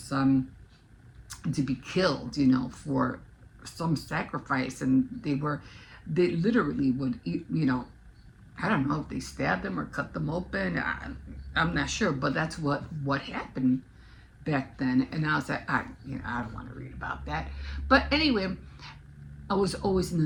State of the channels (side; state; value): both; identical; correlation 1.00